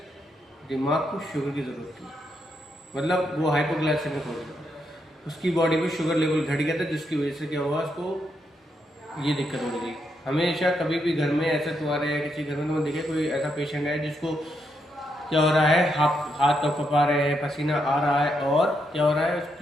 दिमाग को शुगर की ज़रूरत थी, मतलब वो हाइपोग्लाइसेमिक हो गया, उसकी बॉडी में शुगर लेवल घट गया था, जिसकी वजह से क्या हुआ, उसको ये दिक्कत हो रही थी। हमेशा कभी भी घर में ऐसा तुम्हारे या किसी घर में तुम देखे कोई ऐसा पेशेंट है जिसको क्या हो रहा है, हाथ कँपा रहे हैं, पसीना आ रहा है और क्या हो रहा है,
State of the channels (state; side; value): normal; both; correlation 0.80